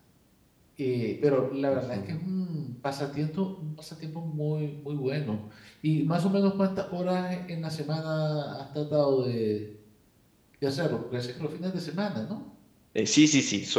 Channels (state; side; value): identical; both; correlation 1.00